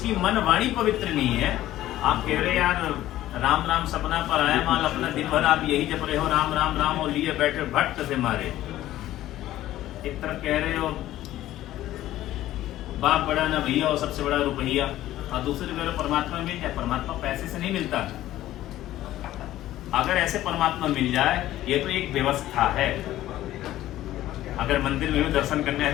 मन वाणी पवित्र नहीं है, आप कह रहे यार राम राम सपना पर आया माल, अपना दिन भर आप यही जप रहे हो राम राम राम और लिए बैठे भट्ट से मारे। एक तरफ कह रहे हो बाप बड़ा ना भैया और सबसे बड़ा रुपया, और दूसरी कह रहे हो परमात्मा मिल जाए। परमात्मा पैसे से नहीं मिलता। अगर ऐसे परमात्मा मिल जाए, ये तो एक व्यवस्था है। अगर मंदिर में भी दर्शन करने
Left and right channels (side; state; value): right; quieter; 14.3 dB